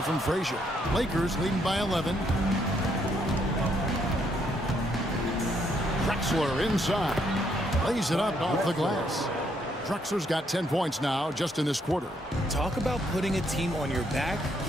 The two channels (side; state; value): both; normal; correlation 0.72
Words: from Frazier. Lakers leading by 11. Drexler inside. Lays it up off the glass. Drexler's got 10 points now just in this quarter. Talk about putting a team on your back.